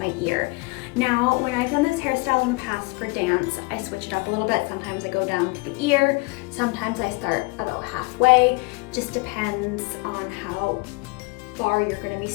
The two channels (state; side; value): quieter; right; 26.7 dB